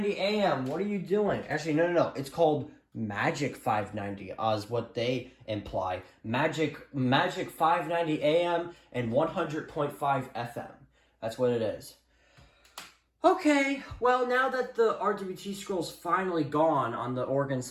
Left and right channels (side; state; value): both; identical; correlation 1.00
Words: a.m. What are you doing? Actually, no. It's called Magic 590, is what they imply. Magic 590 a.m. and 100.5 FM. That's what it is. Okay, well, now that the RWT scroll's finally gone on the Oregon